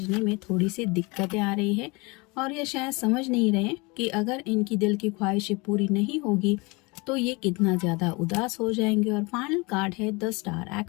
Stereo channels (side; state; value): right; quieter; 26.7 dB